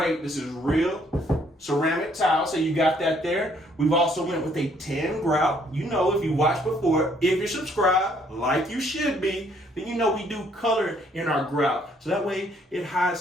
This is real ceramic tile, so you got that there. We've also went with a tan grout. You know, if you watched before, if you're subscribed, like you should be, then you know we do color in our grout. So that way it hides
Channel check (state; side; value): normal; both; correlation 0.66